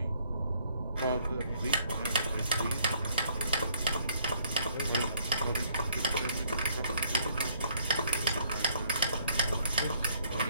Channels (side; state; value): both; inverted; correlation -0.63